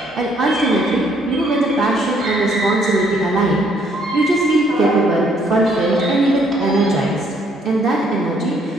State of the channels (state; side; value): normal; both; correlation 0.67